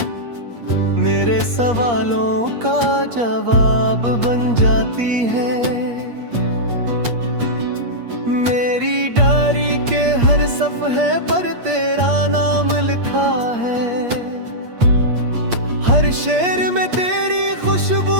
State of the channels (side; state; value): left; late; 8.5 ms